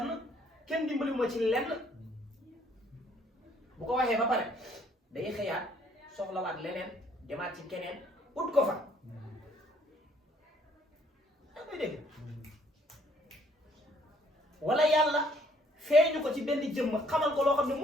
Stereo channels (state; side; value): normal; both; correlation 0.64